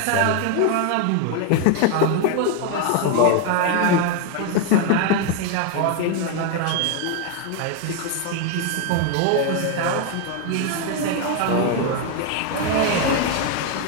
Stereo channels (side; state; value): both; different; correlation 0.01